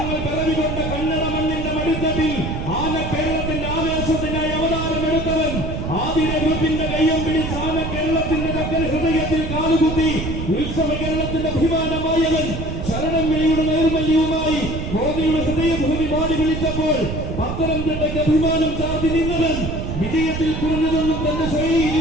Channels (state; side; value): noise; right; rumble, 4 dB below the sound